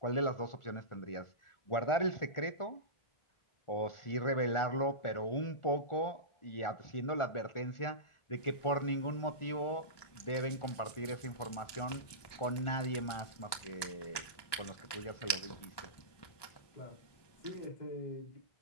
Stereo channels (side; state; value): right; late; 1.2 ms